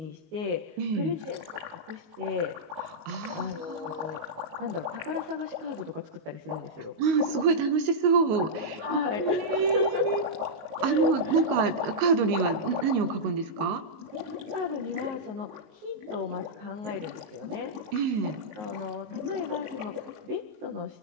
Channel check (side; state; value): left; late; 19 ms